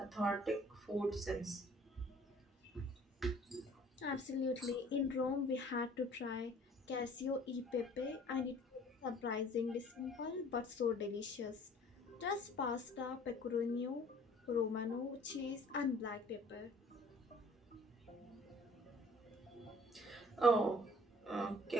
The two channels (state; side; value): normal; both; correlation 0.54